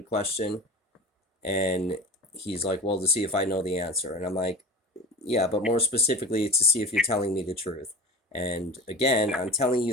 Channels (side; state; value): both; normal; correlation 0.33